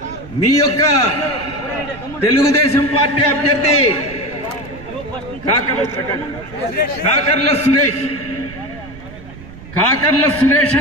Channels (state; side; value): noise; right; rumble, 17 dB below the sound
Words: మీ యొక్క తెలుగుదేశం పార్టీ అభ్యర్థి కాకర్ల సురేష్